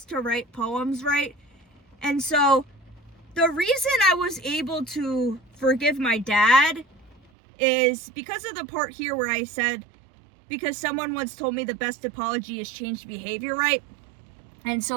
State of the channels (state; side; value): drops out; left; at 7.3 s